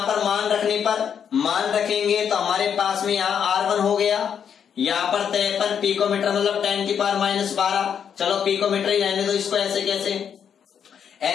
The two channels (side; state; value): right; quieter; 7.9 dB